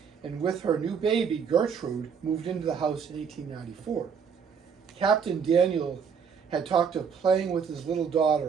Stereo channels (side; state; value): left; quieter; 6.6 dB